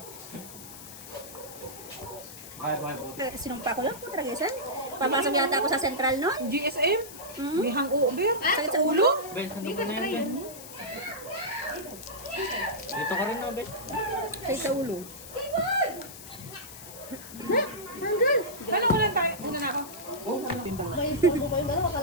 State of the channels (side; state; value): left; noise; hiss, 14 dB below the sound